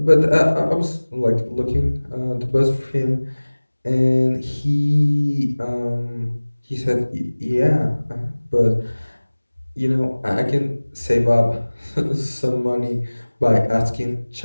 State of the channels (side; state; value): both; inverted; correlation -1.00